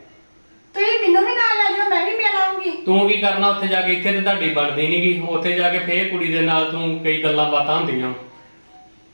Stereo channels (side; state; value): both; inverted; correlation -1.00